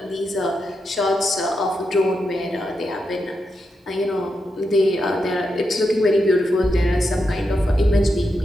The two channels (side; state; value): both; normal; correlation 0.86